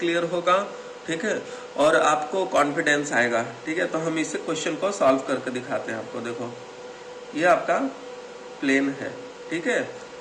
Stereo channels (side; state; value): both; identical; correlation 1.00